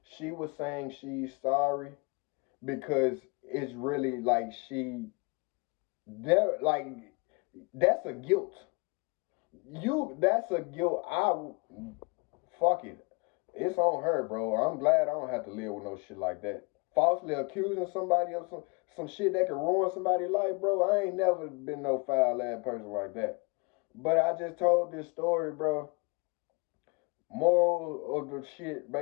She was saying she's sorry because it's really like there like that's a guilt. That's a guilt. Fuck it. It's on her, bro. I'm glad I don't have to live with no shit like that. Falsely accusing somebody of some shit that could ruin somebody's life, bro. I ain't never been no foul ass person like that. But I just told this story, bro. Moral of the shit,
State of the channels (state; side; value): quieter; right; 30.0 dB